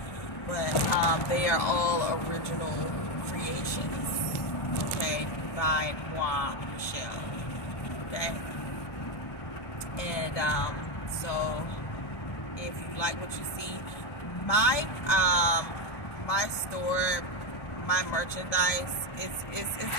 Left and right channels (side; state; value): right; late; 1.2 ms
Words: but they are all original creations, okay, by Moi Michelle, okay. And so if you like what you see, my my store, my merchandise, it's